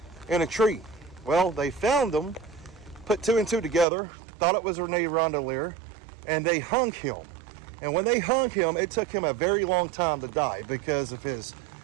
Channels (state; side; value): drops out; left; at 3.9 s